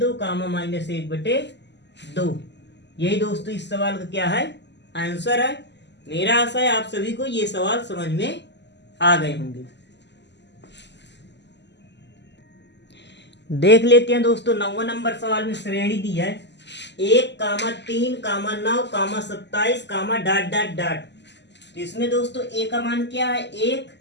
कामा -1/2। यही दोस्तों इस सवाल का क्या है आंसर है। मेरा आशा है आप सभी को ये सवाल समझ में आ गए होंगे। देख लेते हैं दोस्तों 9वां नंबर सवाल में श्रेणी दी है 1, 3, 9, 27, डॉट डॉट डॉट। तो इसमें दोस्तों a का मान क्या है 1,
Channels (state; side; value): late; right; 0.51 ms